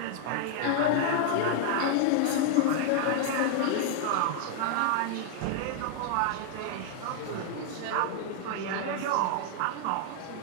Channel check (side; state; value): both; different; correlation 0.00